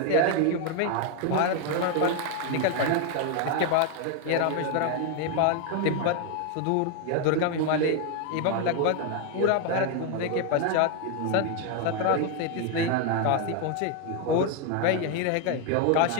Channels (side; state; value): both; different; correlation 0.01